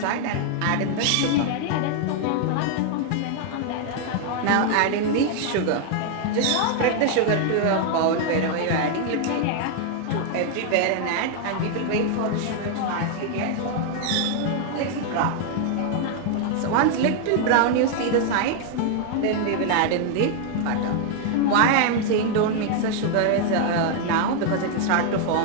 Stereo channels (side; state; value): both; different; correlation 0.00